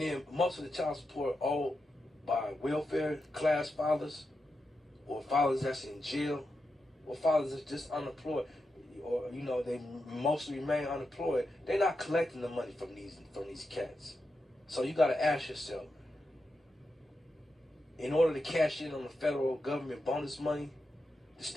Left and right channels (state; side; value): normal; both; correlation 0.87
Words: most of the child support owed by welfare class fathers, or fathers that's in jail, or fathers that's just unemployed, or you know, they mostly remain unemployed. They're not collecting the money from these cats. So you got to ask yourself, in order to cash in on the federal government bonus money, the